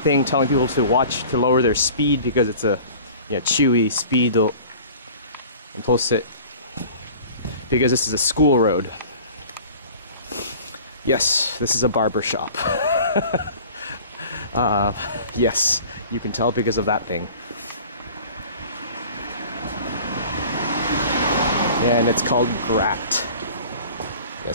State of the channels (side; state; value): both; inverted; correlation -0.44